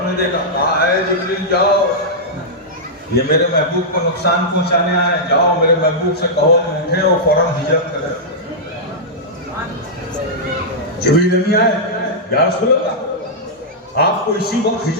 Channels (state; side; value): normal; both; correlation -0.10